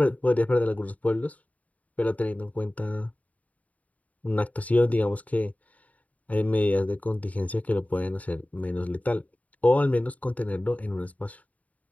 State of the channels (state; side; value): late; right; 0.071 ms